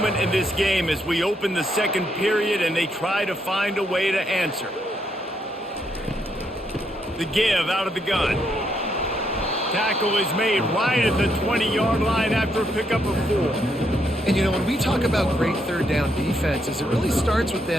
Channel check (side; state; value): both; normal; correlation 0.76